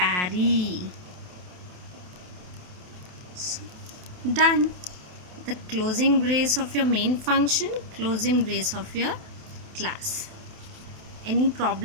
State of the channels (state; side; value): late; left; 28 ms